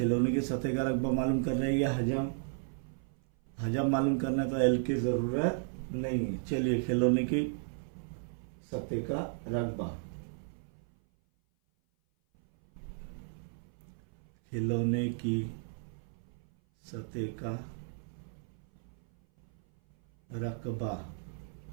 की सतह का रकबा मालूम कर रहे हैं या हजम मालूम करना है, तो एल की ज़रूरत नहीं है। चलिए खिलौने की सतह का रकबा, खिलौने की सतह का रकबा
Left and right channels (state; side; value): silent; left; 55 dB below the other